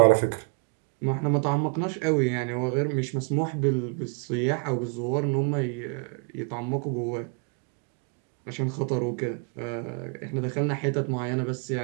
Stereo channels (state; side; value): quieter; left; 36.8 dB